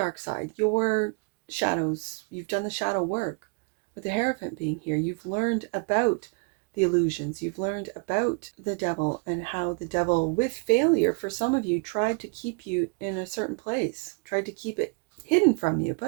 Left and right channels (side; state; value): left; quieter; 35.3 dB